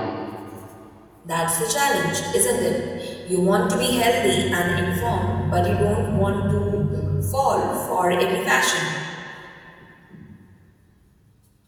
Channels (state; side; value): identical; both; correlation 1.00